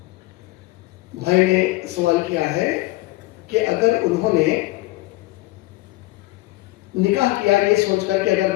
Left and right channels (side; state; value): right; quieter; 19.4 dB